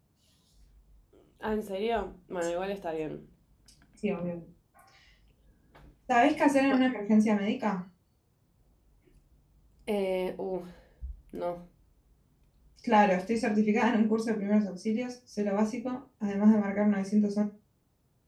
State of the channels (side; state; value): both; identical; correlation 1.00